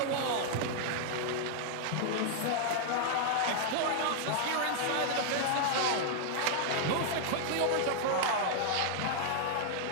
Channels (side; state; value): both; different; correlation 0.00